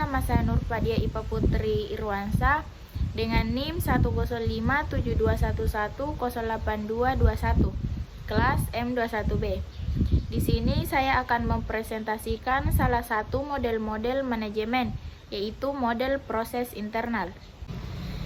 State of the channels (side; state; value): both; identical; correlation 1.00